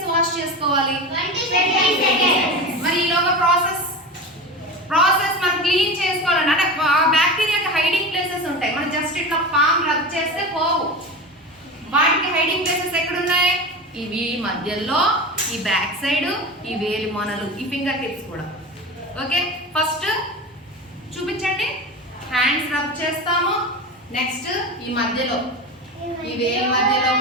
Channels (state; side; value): normal; both; correlation 0.27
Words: వాష్ చేసుకోవాలి? 20 seconds. మరి ఈలోగా ప్రాసెస్ మనం క్లీన్ చేసుకోవాలంటే అంటే బ్యాక్టీరియాకి హైడింగ్ ప్లేసెస్ ఉంటాయి. మనం జస్ట్ ఇట్లా పామ్ రబ్ చేస్తే పోవు. వాటికి హైడింగ్ ప్లేసెస్ ఎక్కడ ఉన్నాయి? ఇవి మధ్యలో, ఈ బ్యాక్ సైడ్, ఈ వేలి మొనలు, ఈ ఫింగర్ టిప్స్ కూడా. ఓకే, ఫస్ట్ చూపించండి. హ్యాండ్స్ రబ్ చేస్తాము. నెక్స్ట్ ఈ మధ్యలో, ఈ వేలి మధ్యలో